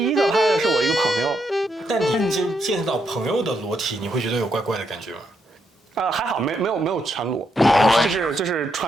一个拍的是我一个朋友。但你见到朋友的裸体，你会觉得有怪怪的感觉吗？还好，没有全裸，就是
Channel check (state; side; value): normal; both; correlation 0.79